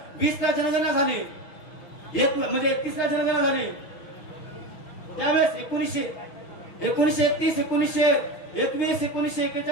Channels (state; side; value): late; right; 6.1 ms